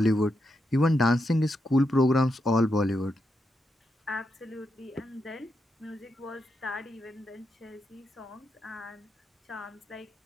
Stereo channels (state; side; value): normal; both; correlation 0.84